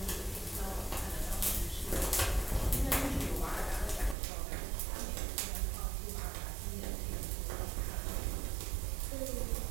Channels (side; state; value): left; drops out; at 4.2 s